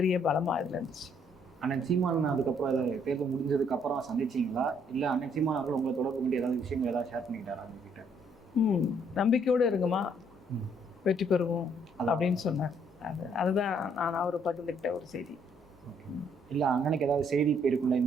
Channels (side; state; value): both; normal; correlation 0.67